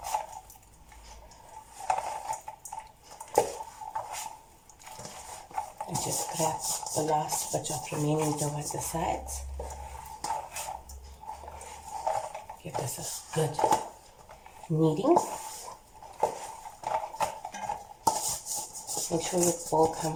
And just grab the last bit of remaining dough at the sides. Give this a good kneading. Make sure your bowl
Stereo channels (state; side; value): identical; both; correlation 1.00